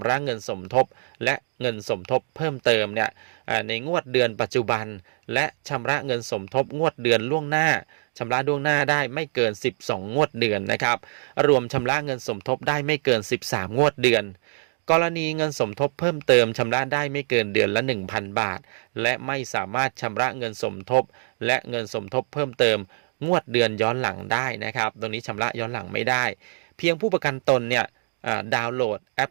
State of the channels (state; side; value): silent; left; digital silence